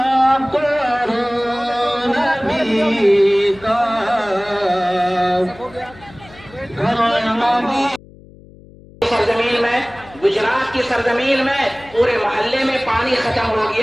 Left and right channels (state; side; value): noise; left; hum, 22 dB below the sound